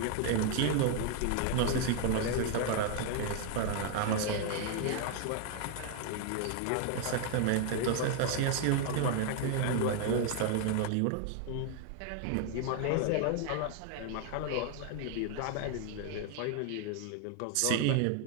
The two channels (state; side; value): different; both; correlation 0.00